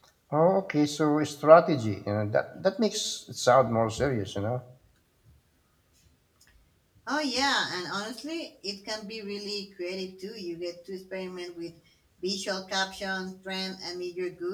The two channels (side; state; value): both; identical; correlation 1.00